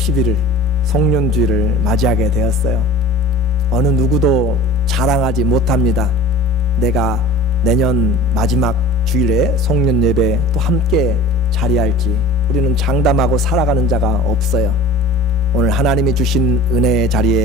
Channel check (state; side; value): normal; both; correlation 0.41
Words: 송년주일을 맞이하게 되었어요. 어느 누구도 자랑하지 못합니다. 내가 내년 마지막 주일에 송년 예배 또 함께 자리할지. 우리는 장담하고 살아가는 자가 없어요. 오늘 하나님이 주신 은혜의